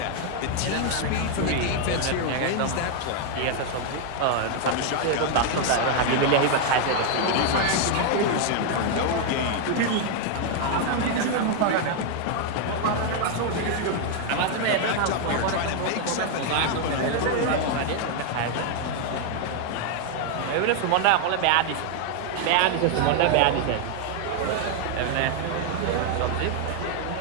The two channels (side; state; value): both; different; correlation 0.00